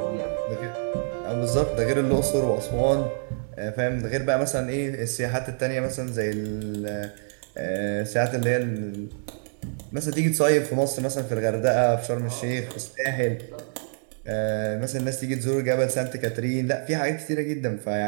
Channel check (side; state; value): left; silent; 61 dB below the other